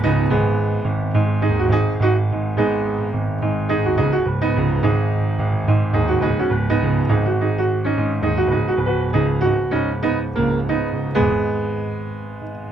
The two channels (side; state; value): both; normal; correlation 0.79